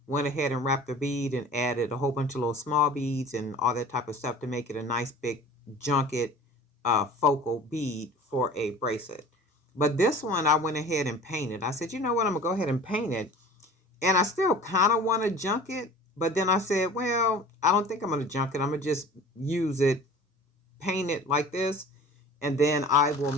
went ahead and wrapped the bead and added a whole bunch of little small beads and all that type of stuff to make it a nice big junket focal bead for a bracelet. But this one I went ahead and painted. I said, you know what, I'm gonna go ahead and paint it. And I still kind of want to junk it, but then I said, well, I don't think I'm gonna junk it. I'm gonna just use it, paint it like this, and then I will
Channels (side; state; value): both; normal; correlation 0.43